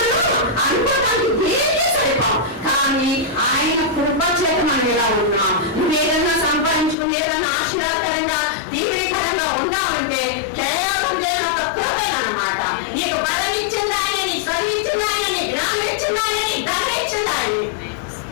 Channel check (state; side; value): drops out; right; at 7.0 s